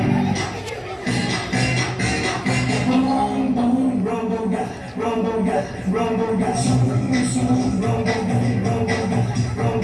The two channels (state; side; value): identical; both; correlation 1.00